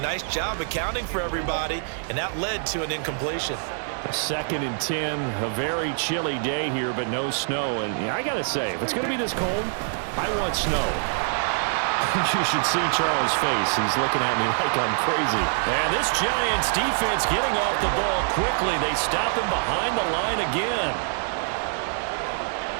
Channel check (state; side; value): silent; left; digital silence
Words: job accounting for everybody, and that led to an incompletion. 2nd and 10, a very chilly day here, but no snow. And I got to say, if it's going to be this cold, I want snow. You should see Charles' face. He's looking at me like I'm crazy. And this Giants defense getting off the ball quickly. They stop him behind the line again.